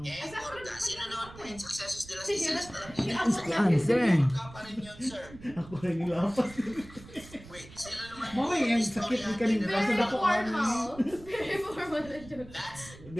Morga. Sino naman po yung successos de las Islas Filipinas? Answer. Morga pa rin yun, sir. Ako rin nilapas. Wait, sino naman Mamay, yung sakit ni kanina. Basta Very dako formal. Very formal na joke.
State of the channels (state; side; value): noise; right; rumble, 18 dB below the sound